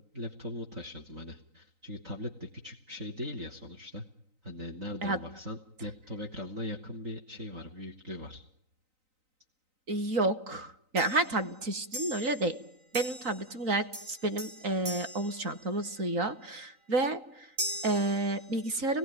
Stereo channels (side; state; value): left; late; 3.9 ms